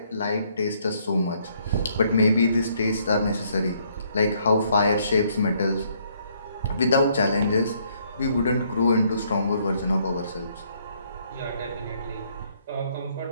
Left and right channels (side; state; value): both; inverted; correlation -0.68